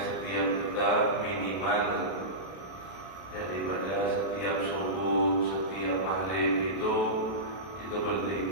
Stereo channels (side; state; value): right; late; 32 ms